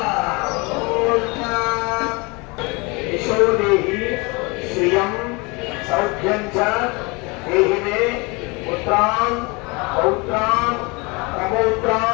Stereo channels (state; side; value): quieter; right; 27.5 dB